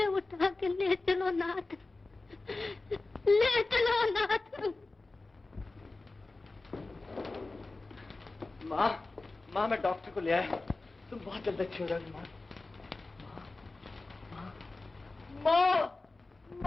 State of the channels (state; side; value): quieter; right; 3.3 dB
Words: उठा के ले चलो नाथ, ले चलो नाथ। माँ, माँ मैं डॉक्टर को ले आया, तुम बहुत जल्द अच्छी हो जाओगी माँ। माँ,